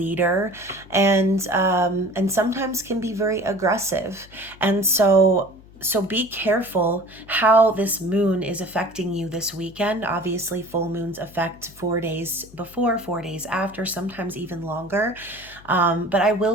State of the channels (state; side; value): noise; left; hum, 23 dB below the sound